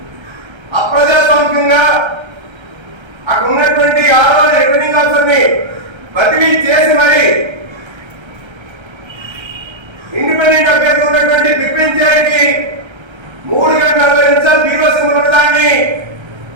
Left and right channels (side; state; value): left; late; 1.3 ms